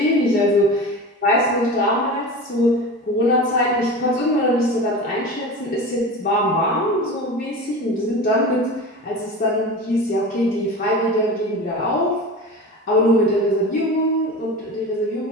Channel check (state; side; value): normal; both; correlation 0.31